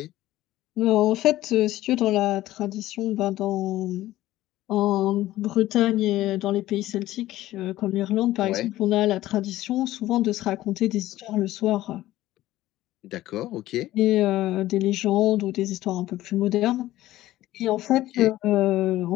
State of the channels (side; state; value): right; quieter; 15.4 dB